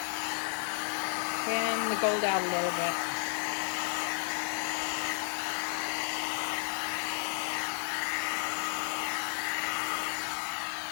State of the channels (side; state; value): right; silent; digital silence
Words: Fan the gold out a little bit.